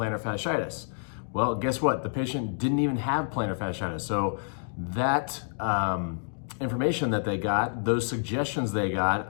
fasciitis. Well, guess what? The patient didn't even have plantar fasciitis. So that information that they got, those suggestions they got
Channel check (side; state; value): right; silent; digital silence